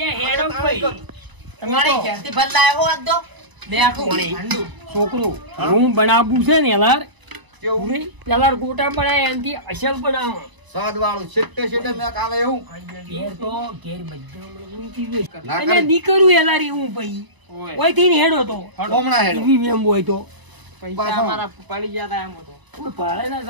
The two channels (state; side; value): late; left; 1.0 ms